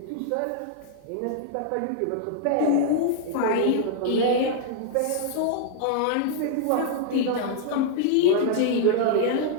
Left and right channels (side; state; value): both; different; correlation -0.01